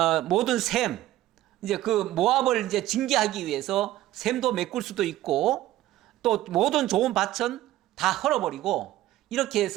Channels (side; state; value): left; quieter; 14.8 dB